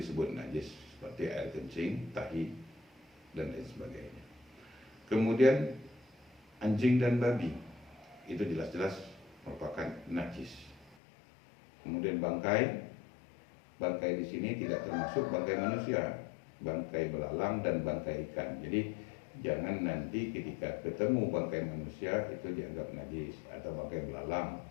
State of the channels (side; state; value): right; drops out; at 11.0 s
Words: najis, seperti air kencing, tahi, dan lain sebagainya. Kemudian anjing dan babi, itu jelas-jelas merupakan najis. Kemudian bangkai di sini tidak termasuk bangkai manusia, bangkai belalang dan bangkai ikan. Jadi jangan nanti ketika ketemu bangkai manusia itu dianggap najis, atau bangkai belalang,